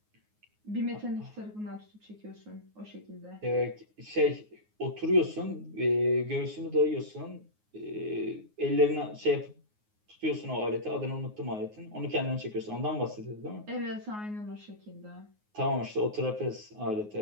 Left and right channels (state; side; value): late; left; 9.5 ms